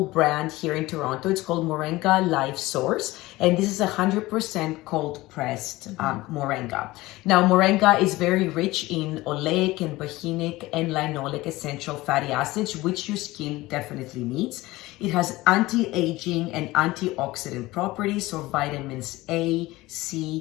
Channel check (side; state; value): right; quieter; 19.2 dB